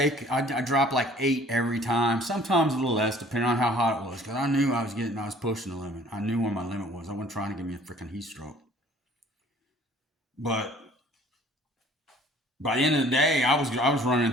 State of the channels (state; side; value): normal; both; correlation 0.54